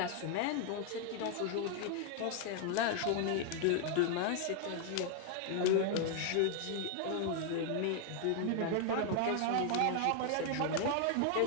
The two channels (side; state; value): both; different; correlation 0.00